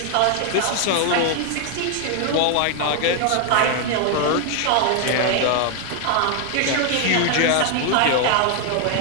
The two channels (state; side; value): different; both; correlation 0.00